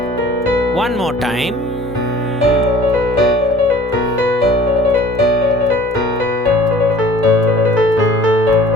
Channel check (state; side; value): normal; both; correlation 0.49